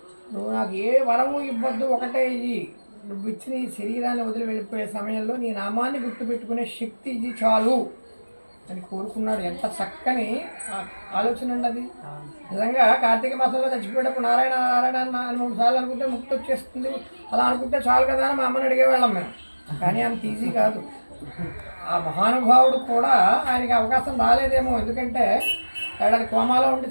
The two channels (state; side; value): inverted; both; correlation -1.00